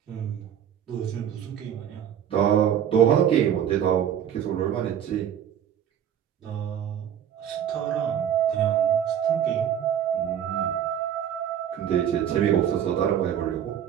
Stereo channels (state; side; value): quieter; left; 9.5 dB